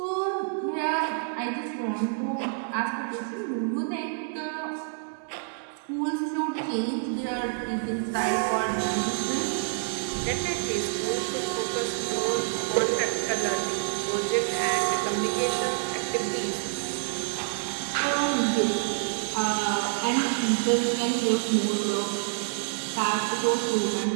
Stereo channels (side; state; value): left; silent; digital silence